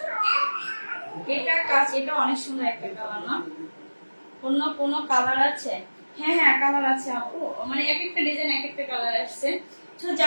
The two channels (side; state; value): both; inverted; correlation -1.00